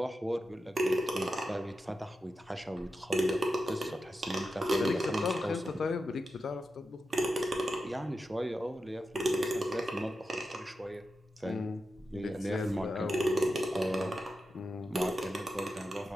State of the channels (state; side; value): normal; both; correlation 0.90